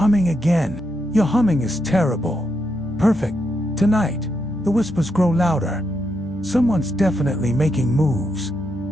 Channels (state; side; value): normal; both; correlation 0.81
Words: again. Your humming is terrible. Perfect. Tonight, the whispers grow louder. Someone's definitely making moves.